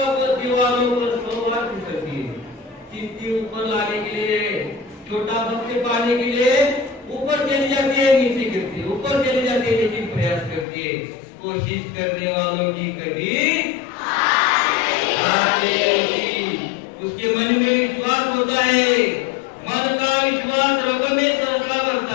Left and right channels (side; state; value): right; drops out; at 10.7 s